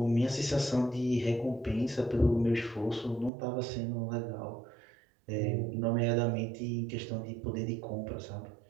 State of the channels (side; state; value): left; drops out; at 3.3 s